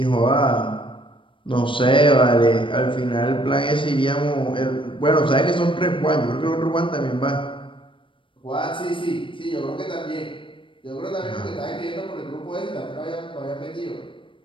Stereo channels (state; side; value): late; right; 0.25 ms